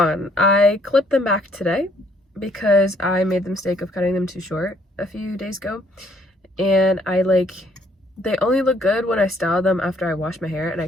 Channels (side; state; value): both; normal; correlation 0.66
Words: I clipped them back today because I made the mistake of cutting them too short a few days ago, and they only look good when I style them after I wash my hair, and I